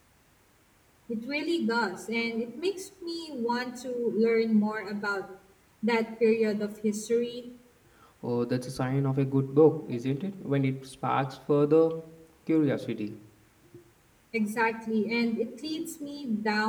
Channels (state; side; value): identical; both; correlation 1.00